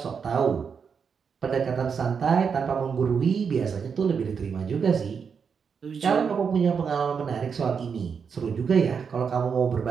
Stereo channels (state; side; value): quieter; left; 6.3 dB